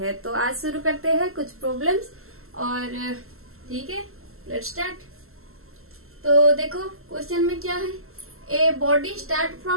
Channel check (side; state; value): left; late; 0.62 ms